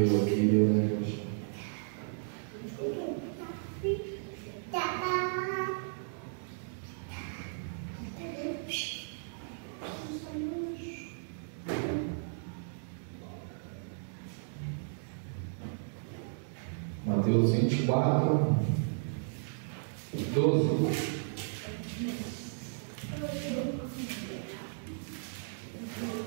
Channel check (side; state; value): left; silent; digital silence